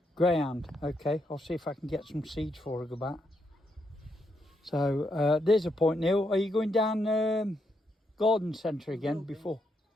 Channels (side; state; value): both; normal; correlation 0.79